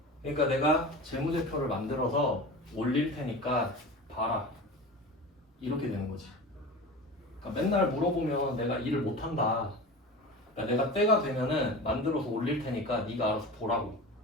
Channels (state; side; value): normal; both; correlation 0.32